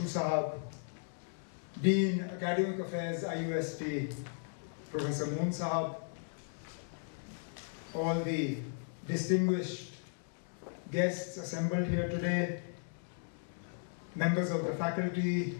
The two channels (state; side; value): silent; right; digital silence